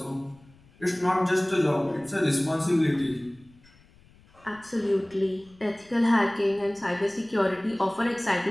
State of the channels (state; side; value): noise; left; rumble, 28 dB below the sound